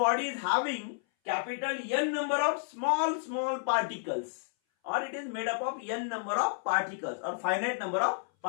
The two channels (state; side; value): silent; right; 57 dB below the other